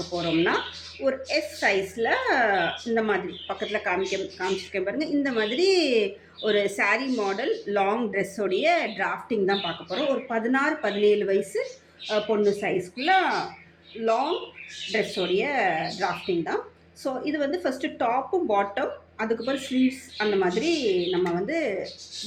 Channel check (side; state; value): both; identical; correlation 1.00